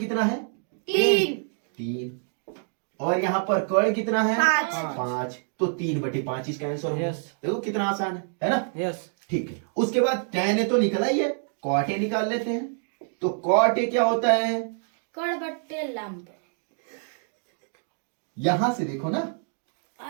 है? 3 और यहाँ पर कर्ण कितना है? 5। तो 3/5 इसका आंसर होगा। Yes. देखो कितना आसान है ना। यस। ठीक है। उसके बाद tan ए तो निकला ही है, cot ए निकाल लेते हैं। तो cot ए क्या होता है? कर्ण बटे लंब। यहां से देखो ना,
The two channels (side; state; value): left; silent; 60 dB below the other